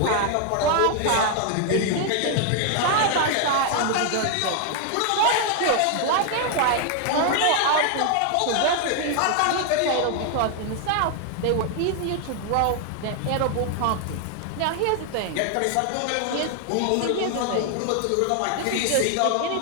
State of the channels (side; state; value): both; different; correlation 0.00